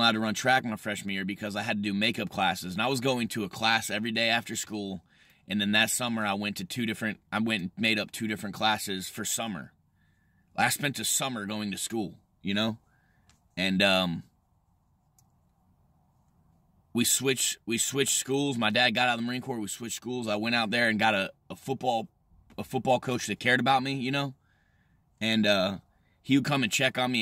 to run track my freshman year because I had to do makeup classes. And I was going to a class every day after school. And then that summer, I went and made up 2 different classes for summer. I spent a summer going to school, you know? And we switched schools. My dad got out of the Marine Corps. We switched schools. I went out there and got a football coach that cared about me, you know? And he would come and check on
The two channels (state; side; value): identical; both; correlation 1.00